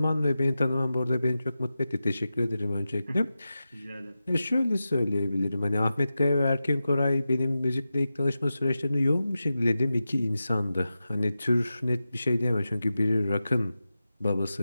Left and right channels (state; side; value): inverted; both; correlation -0.93